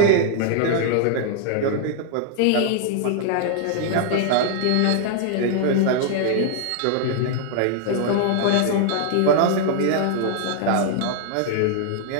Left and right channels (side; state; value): both; different; correlation 0.00